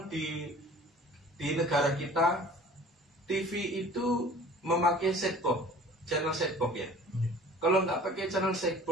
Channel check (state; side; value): normal; both; correlation 0.46